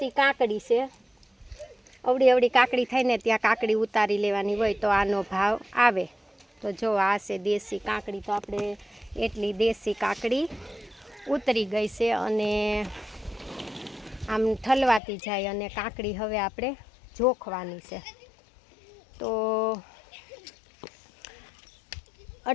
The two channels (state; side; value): drops out; right; at 15.0 s